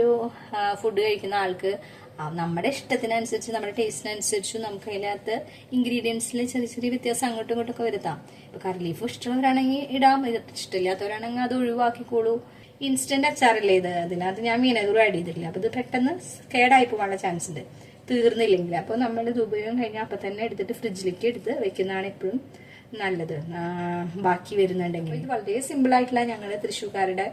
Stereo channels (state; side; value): identical; both; correlation 1.00